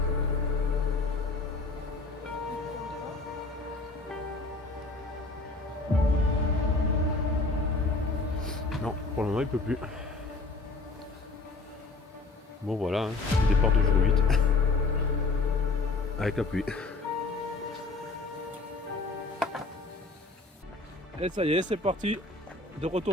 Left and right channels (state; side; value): quieter; right; 3.5 dB